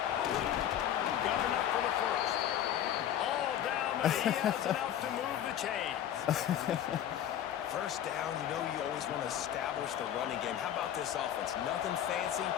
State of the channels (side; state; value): right; quieter; 10.6 dB